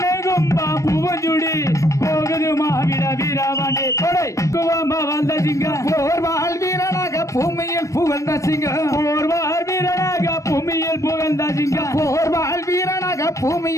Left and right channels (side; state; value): right; late; 0.15 ms